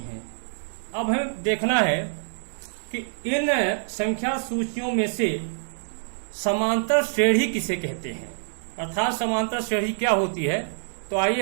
अब हमें देखना है कि इन संख्या सूचियों में से समांतर श्रेणी किसे कहते हैं, अर्थात समांतर श्रेणी क्या होती है। तो आइए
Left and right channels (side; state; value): left; silent; 61 dB below the other